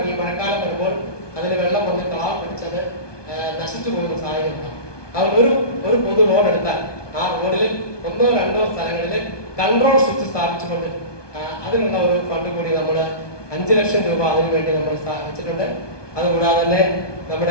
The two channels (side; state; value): right; late; 1.2 ms